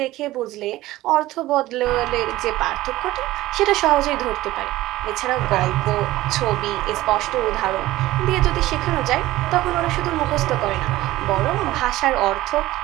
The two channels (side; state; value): left; quieter; 16.9 dB